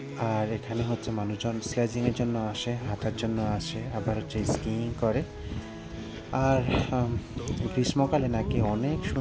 আর এখানে হচ্ছে মানুষজন স্লেজিংয়ের জন্য আসে, হাঁটার জন্য আসে, আবার হচ্ছে স্কিইং করে। আর গ্রীষ্মকালে নাকি অনেক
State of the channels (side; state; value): both; identical; correlation 1.00